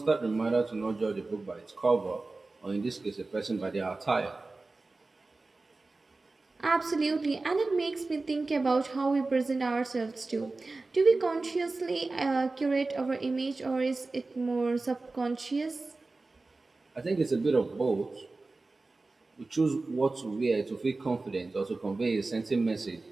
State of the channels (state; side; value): quieter; left; 3.4 dB